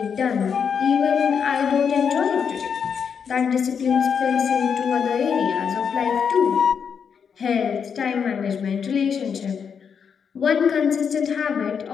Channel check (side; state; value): right; quieter; 6.8 dB